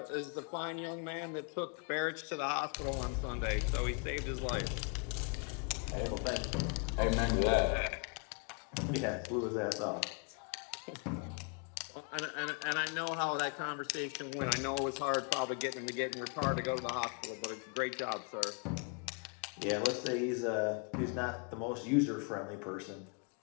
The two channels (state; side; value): quieter; right; 36.7 dB